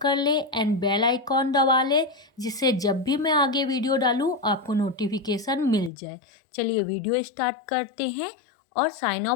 कर ले एंड बेल आइकॉन दबा ले, जिससे जब भी मैं आगे वीडियो डालूँ आपको नोटिफिकेशन मिल जाए। चलिए वीडियो स्टार्ट करते हैं और साइन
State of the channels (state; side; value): drops out; right; at 5.9 s